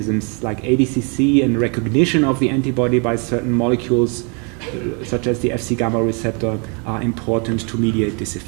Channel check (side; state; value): left; quieter; 35.4 dB